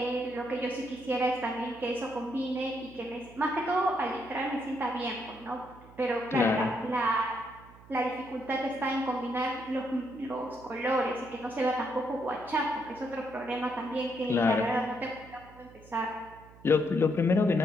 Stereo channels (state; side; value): noise; right; hum, 22 dB below the sound